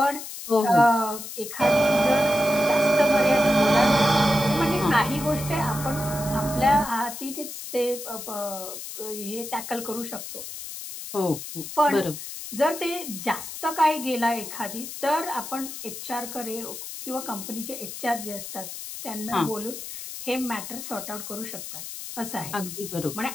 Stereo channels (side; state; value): left; noise; hiss, 9 dB below the sound